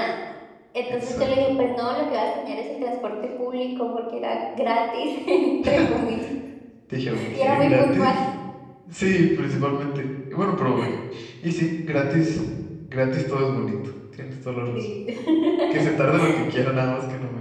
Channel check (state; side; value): identical; both; correlation 1.00